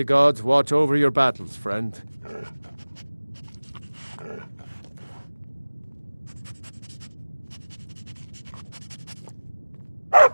gods watch over your battles, friend.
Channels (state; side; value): inverted; both; correlation -1.00